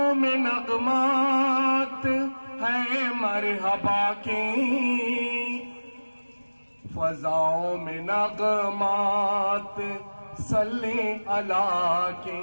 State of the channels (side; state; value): both; inverted; correlation -1.00